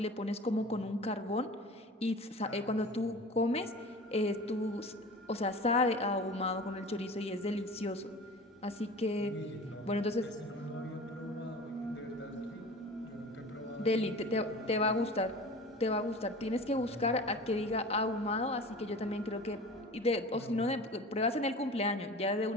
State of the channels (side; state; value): both; normal; correlation 0.38